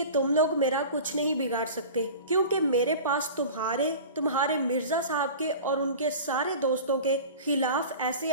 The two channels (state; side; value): inverted; both; correlation -0.36